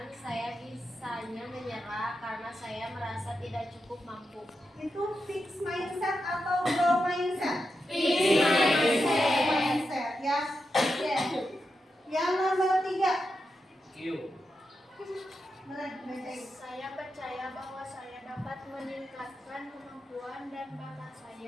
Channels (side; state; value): both; normal; correlation 0.87